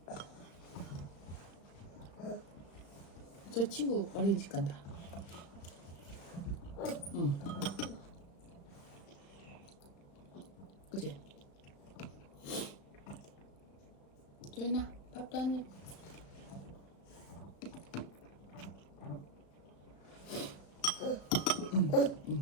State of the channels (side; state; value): right; late; 35 ms